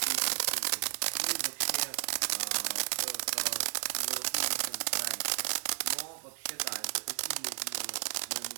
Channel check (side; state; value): left; silent; 56 dB below the other